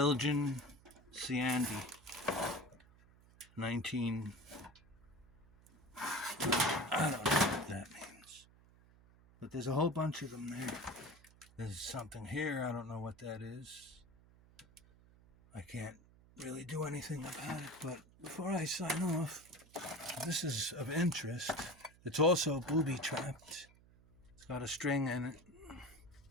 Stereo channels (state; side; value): noise; right; hum, 25 dB below the sound